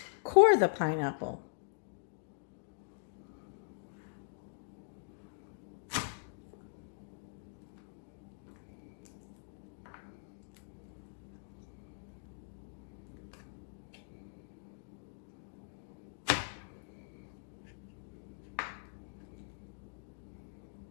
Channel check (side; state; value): right; silent; digital silence